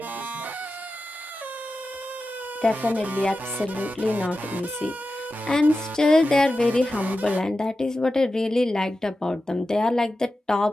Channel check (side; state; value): both; normal; correlation 0.92